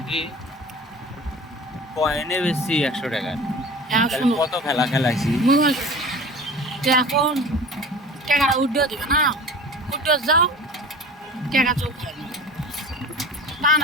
কয়েনে বেশি 100 টাকা কত খেলাইছি এখন টাকা উঠে দিবে না উঠে যাও টাকা চোখ খায় না টান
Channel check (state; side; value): normal; both; correlation 0.39